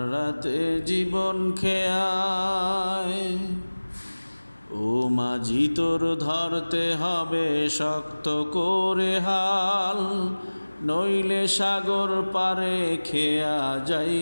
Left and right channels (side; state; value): both; inverted; correlation -1.00